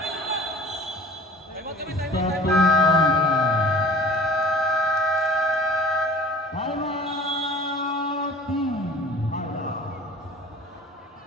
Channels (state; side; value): normal; both; correlation 0.45